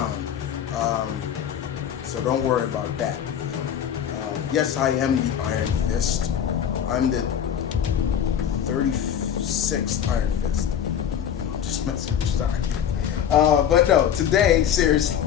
So don't worry about that. Yes, I am the Iron Fist. I'm the 36th Iron Fist. I'm just messing with you, sorry. But no, today, seriously,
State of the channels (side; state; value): right; quieter; 9.0 dB